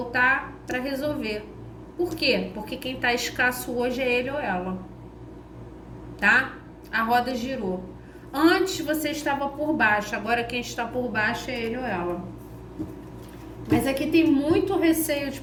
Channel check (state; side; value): identical; both; correlation 1.00